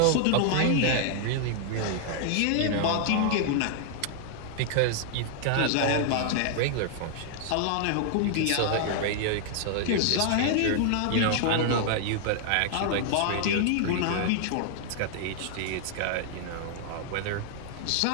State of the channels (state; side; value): different; both; correlation 0.00